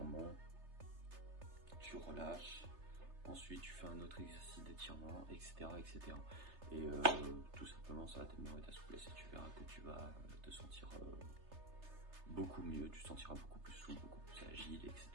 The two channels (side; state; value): left; late; 3.3 ms